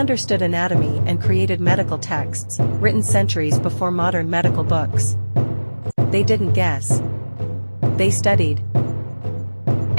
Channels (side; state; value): both; inverted; correlation -1.00